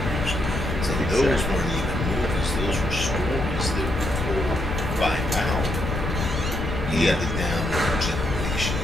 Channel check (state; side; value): noise; left; rumble, 3 dB below the sound